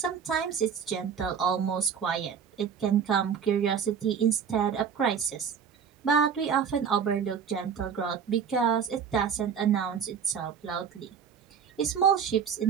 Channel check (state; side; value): quieter; left; 7.2 dB